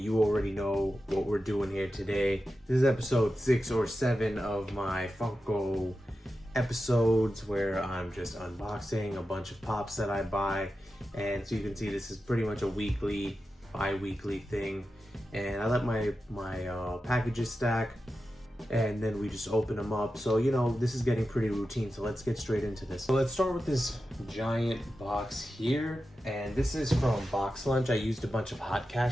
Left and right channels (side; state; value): both; normal; correlation 0.91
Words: you already know what we're doing here today. This is episode 6 or 7 of my Funko episodes where I'm just unboxing a bunch of pops that I buy. And so you can see this is pretty much a weekly, bi-weekly thing. And I let my packages stack, and then we just open them up. So, you know, this is getting pretty routine, so let's get straight into this. So let's start with this giant box here, and this is from Box Lunch. I used a bunch of hot